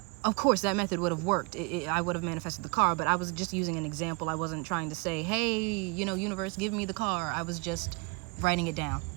of course that method would have worked. I would have manifested the car, but I was just using an example. I wasn't trying to say, hey, universe, give me the car. I was just writing it down.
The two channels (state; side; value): quieter; left; 30.3 dB